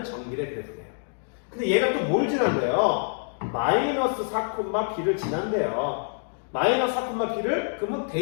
정길의 그래프네요. 근데 얘가 또 뭘 지난대요? 마이너스 4, b를 지난대요. 마이너스 4, b를 그러면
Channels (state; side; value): silent; right; digital silence